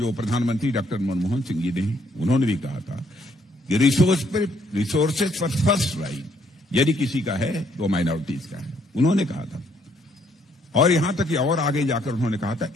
प्रधानमंत्री डॉक्टर मनमोहन सिंह जी ने उन्होंने भी कहा था कि रिसोर्सेज पर फर्स्ट राइट यदि किसी का है तो माइनॉरिटीज का है, उन्होंने कहा था। और यहां तक कि और आगे जाकर उन्होंने कहा था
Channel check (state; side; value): normal; both; correlation 0.68